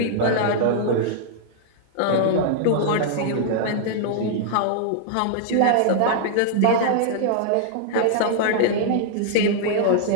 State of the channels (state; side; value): different; both; correlation -0.01